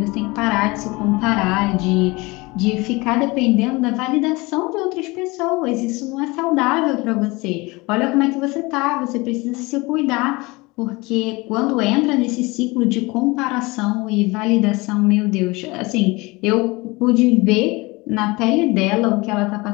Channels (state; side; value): quieter; right; 23.8 dB